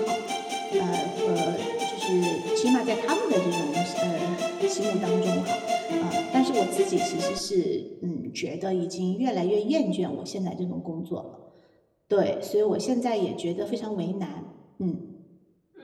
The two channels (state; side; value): identical; both; correlation 1.00